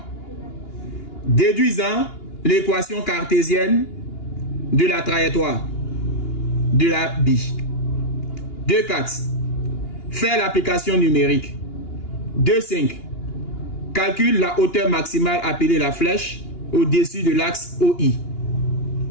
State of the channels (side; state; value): right; late; 2.9 ms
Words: Déduisant l'équation cartésienne de la trajectoire de la bille. 2.4. Fait l'application numérique. 2.5. Calcule la hauteur maximale appelée la flèche au-dessus de l'axe OI.